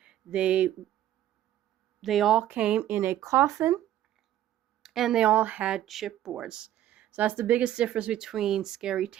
They all came in a coffin, and they all had chipboards. So that's the biggest difference between Scary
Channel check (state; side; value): quieter; left; 12.3 dB